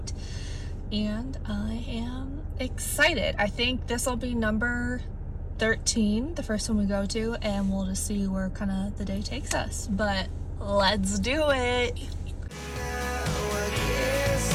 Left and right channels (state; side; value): identical; both; correlation 1.00